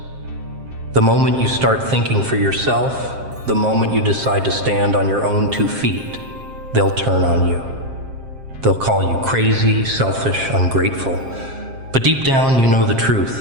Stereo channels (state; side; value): late; left; 7.5 ms